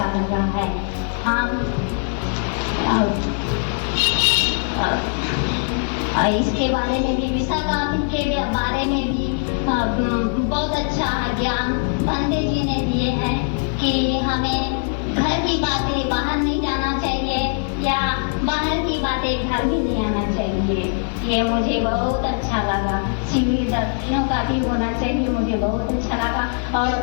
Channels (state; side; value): silent; right; 65 dB below the other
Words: लगा है। हम इसके बारे में भी, विशाखा के बारे में भी बहुत अच्छा ज्ञान पंडित जी ने दिए हैं कि हमें घर की बातें बाहर नहीं जाना चाहिए या बाहर की बातें घर में नहीं आना चाहिए। ये मुझे बहुत अच्छा लगा। शिविर 10 दिनों का भी होना चाहिए, मुझे बहुत अच्छा लगा। और